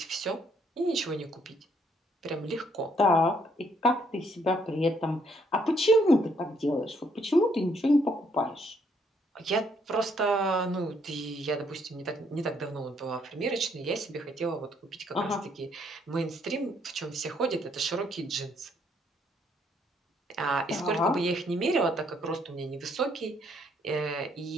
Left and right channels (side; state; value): both; normal; correlation 0.70